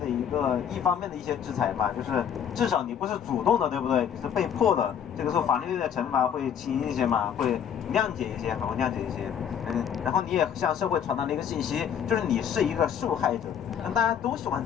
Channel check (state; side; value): quieter; right; 8.5 dB